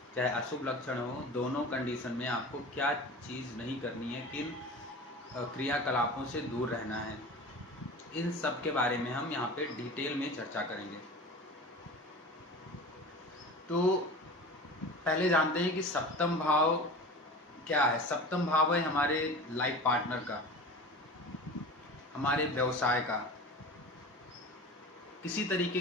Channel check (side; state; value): both; normal; correlation 0.34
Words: चाहे अशुभ लक्षण हो। दोनों कंडीशन में आपको क्या चीज़ नहीं करनी है, किन क्रियाकलापों से दूर रहना है, इन सब के बारे में हम यहाँ पे डिटेल में चर्चा करेंगे। तो पहले जानते हैं कि सप्तम भाव क्या है। सप्तम भाव है हमारे लाइफ पार्टनर का, हमारे व्यवसाय का। किसी तरीके